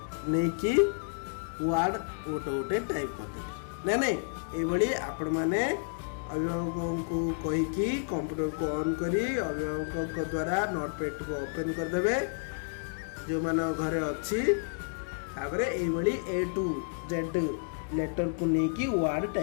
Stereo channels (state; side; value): silent; right; digital silence